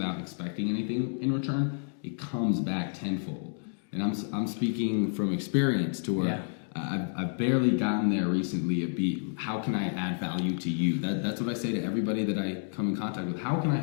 expecting anything in return, it comes back tenfold. And I'm speaking from experience to where I've barely gotten there recently. How can I add value to you? That's what I say to everybody that I come in contact with. How can I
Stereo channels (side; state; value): right; silent; digital silence